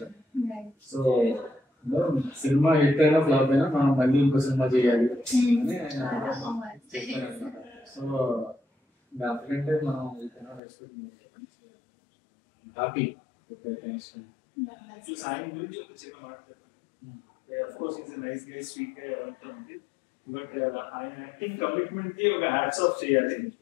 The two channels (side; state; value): right; drops out; at 10.6 s